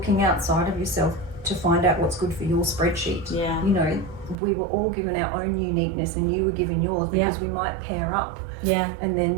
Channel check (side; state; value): left; drops out; at 4.4 s